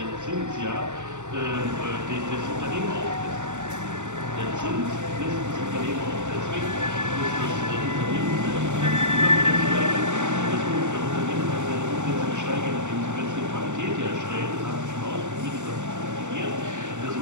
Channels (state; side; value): late; left; 0.84 ms